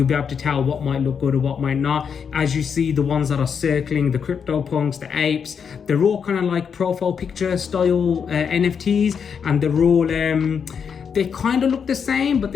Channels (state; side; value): quieter; right; 6.8 dB